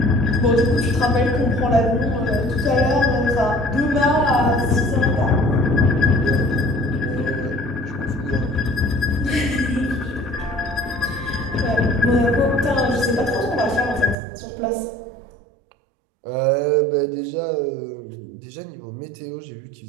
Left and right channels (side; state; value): left; drops out; at 14.2 s